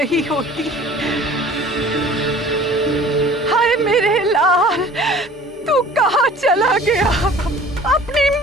होती। हाय मेरे लाल, तू कहाँ चला गया अपनी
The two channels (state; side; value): normal; both; correlation 0.47